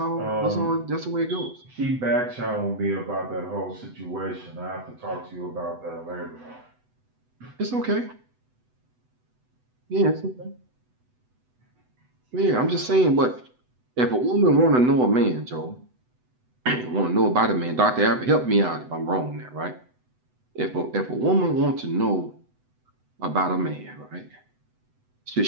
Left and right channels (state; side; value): late; left; 8.0 ms